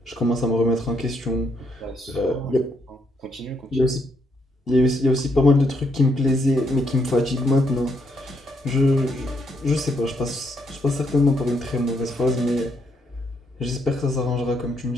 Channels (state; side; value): normal; both; correlation 0.75